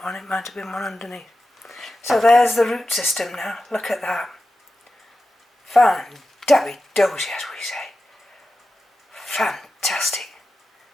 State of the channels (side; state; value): both; normal; correlation 0.92